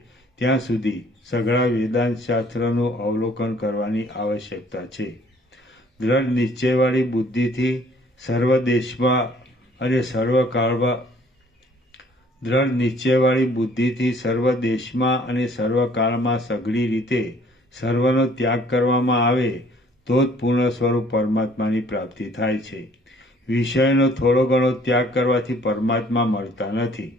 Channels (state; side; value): normal; both; correlation 0.57